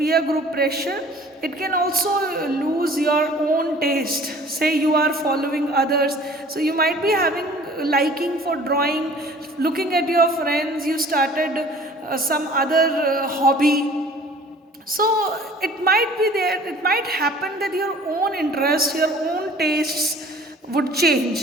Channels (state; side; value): normal; both; correlation 0.49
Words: group pressure, it can also lose your own taste. Say you are following others, so you might be having liking for drawing, looking at your friends, you started some other hobby. So it might be there, it might happen that your own interests, your own tastes would